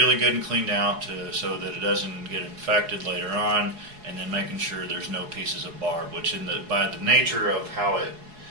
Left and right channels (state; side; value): late; left; 4.7 ms